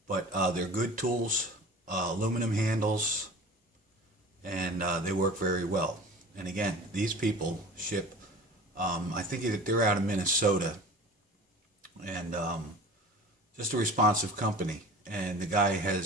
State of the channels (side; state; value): both; normal; correlation 0.40